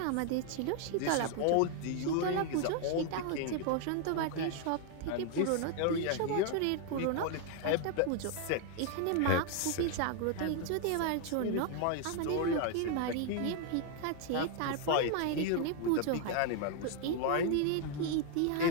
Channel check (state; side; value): different; both; correlation 0.00